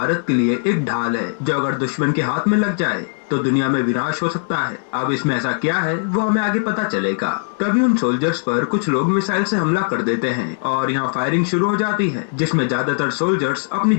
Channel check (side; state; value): right; silent; digital silence